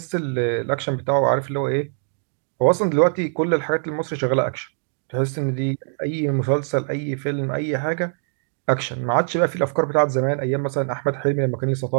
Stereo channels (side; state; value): left; silent; 64 dB below the other